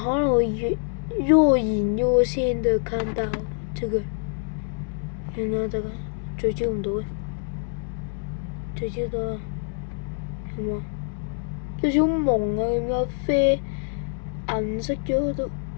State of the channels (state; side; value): silent; right; digital silence